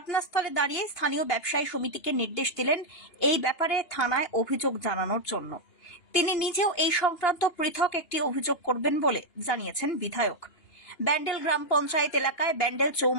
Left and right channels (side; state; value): right; late; 2.8 ms